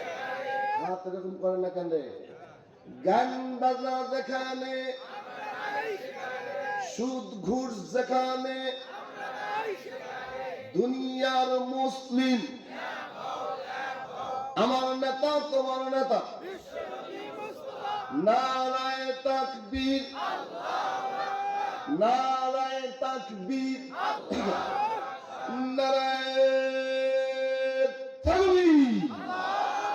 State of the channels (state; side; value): identical; both; correlation 1.00